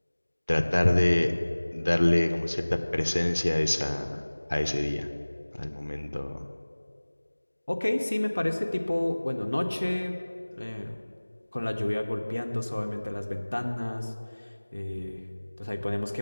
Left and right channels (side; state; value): both; inverted; correlation -1.00